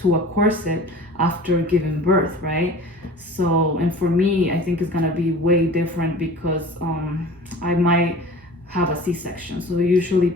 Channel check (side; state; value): both; normal; correlation 0.41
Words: a corset after giving birth, right? So, and for me, I think it's gonna be way different because I might have a C-section. So usually